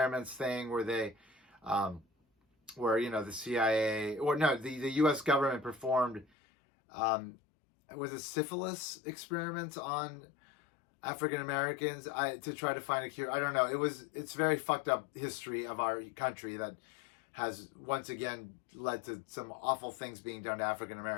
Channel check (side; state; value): right; drops out; at 6.2 s